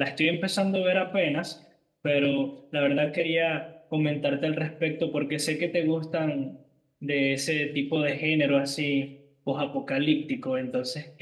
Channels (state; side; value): identical; both; correlation 1.00